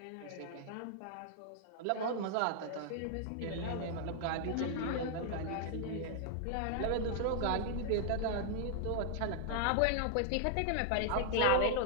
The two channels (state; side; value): different; both; correlation -0.01